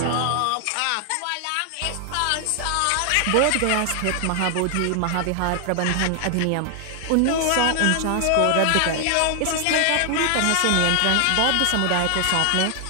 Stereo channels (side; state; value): both; different; correlation 0.00